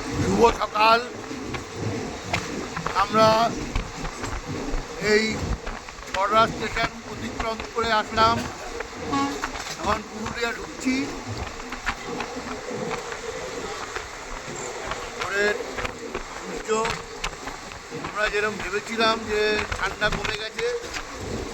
শুভ সকাল। আমরা এই বড়রা স্টেশন অতিক্রম করে আসলাম, এখন পুরুলিয়া ঢুকছি। পরের সূর্য আমরা যেরকম ভেবেছিলাম যে ঠান্ডা কমে গেছে,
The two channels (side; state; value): both; identical; correlation 1.00